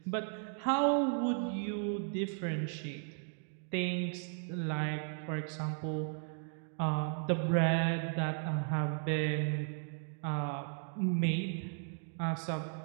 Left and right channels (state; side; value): silent; left; 54 dB below the other